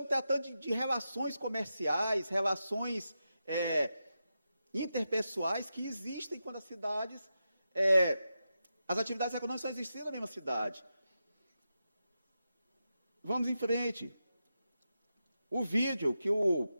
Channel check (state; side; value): inverted; both; correlation -0.89